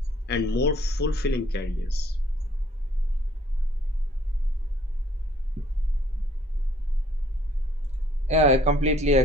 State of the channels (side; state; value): both; normal; correlation 0.62